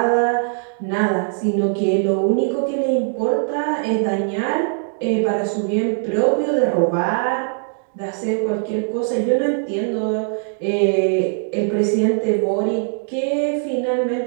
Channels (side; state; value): left; silent; digital silence